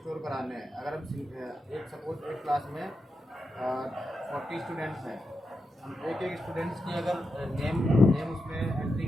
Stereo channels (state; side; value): normal; both; correlation 0.88